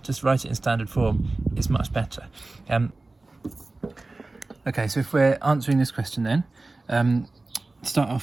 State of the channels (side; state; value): left; quieter; 3.2 dB